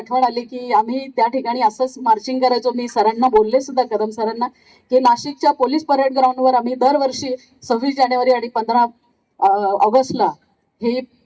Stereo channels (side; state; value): both; identical; correlation 1.00